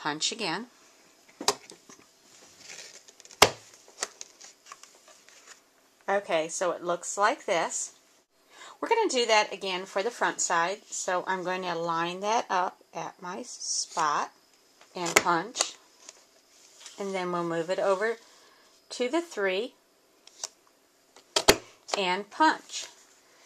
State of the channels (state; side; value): identical; both; correlation 1.00